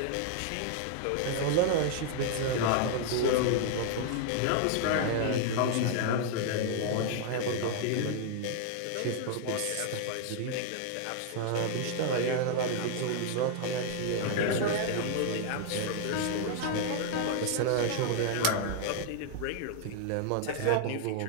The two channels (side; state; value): both; different; correlation 0.00